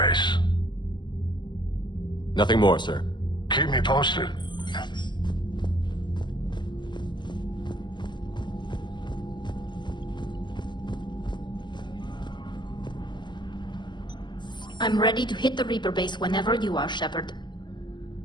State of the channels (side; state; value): right; late; 0.22 ms